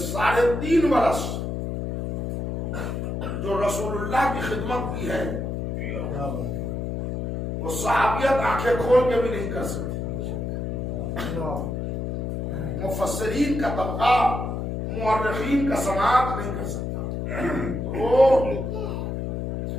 3.5 برس جو رسول اللہ کی خدمت کی ہے وہ صحابیت آنکھیں کھول کے بھی نہیں کر سکتے۔ مفسرین کا طبقہ، مورخین کا سماعت نہیں کر سکتا۔ وہ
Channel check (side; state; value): left; noise; hum, 3 dB below the sound